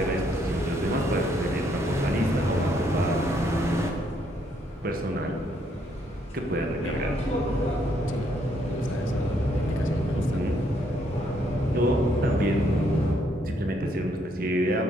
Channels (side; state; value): both; normal; correlation 0.71